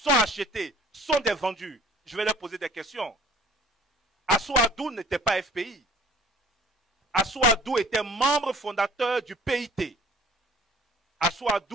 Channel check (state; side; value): normal; both; correlation 0.51